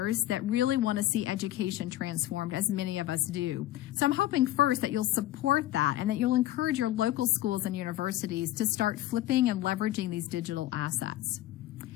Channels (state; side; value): quieter; right; 14.8 dB